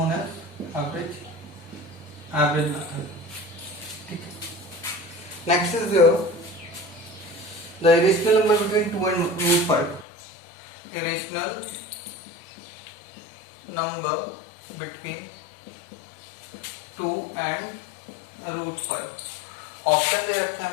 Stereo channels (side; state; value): right; drops out; at 10.1 s